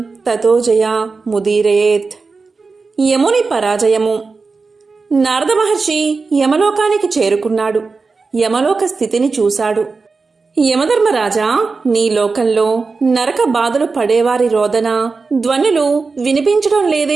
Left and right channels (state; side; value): quieter; left; 4.3 dB